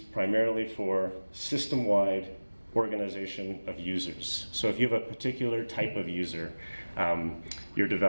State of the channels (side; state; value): both; inverted; correlation -1.00